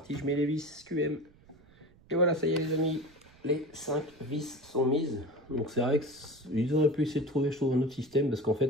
je mets les vis QM. Et voilà, ça y est les amis, les 5 vis sont mises. Donc c'est vrai qu'ils auraient pu essayer de trouver, je trouve, un autre système, parce qu'en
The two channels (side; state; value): right; noise; rumble, 28 dB below the sound